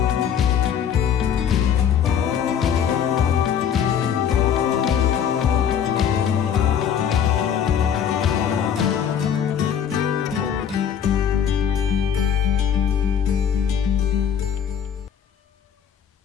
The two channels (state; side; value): quieter; right; 8.3 dB